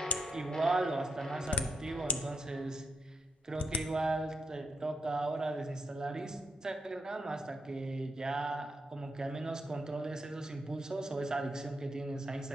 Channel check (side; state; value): both; normal; correlation 0.79